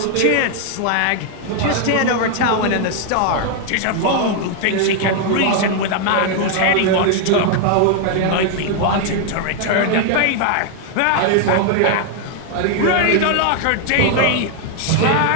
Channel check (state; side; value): different; both; correlation 0.00